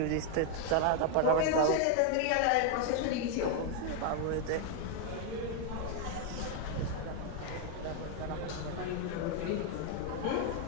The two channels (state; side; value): different; both; correlation 0.00